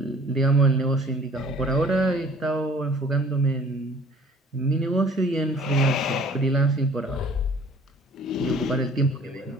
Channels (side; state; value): both; normal; correlation 0.53